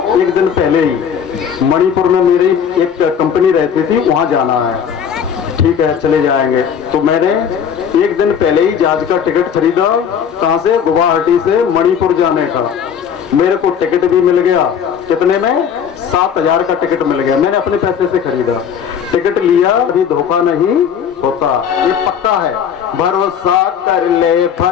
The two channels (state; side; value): quieter; right; 7.8 dB